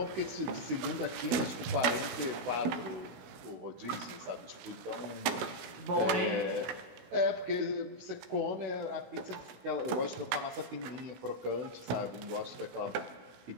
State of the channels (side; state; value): left; late; 16 ms